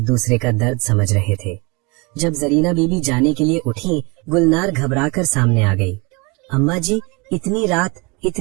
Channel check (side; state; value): left; quieter; 28.3 dB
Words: दूसरे का दर्द समझ रहे थे। जब जरीना बीबी जाने के लिए उठी, गुलनार घबराकर सामने आ गई। अम्मा जी, इतनी रात,